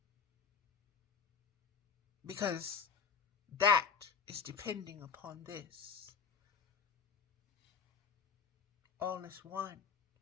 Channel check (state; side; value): quieter; right; 6.3 dB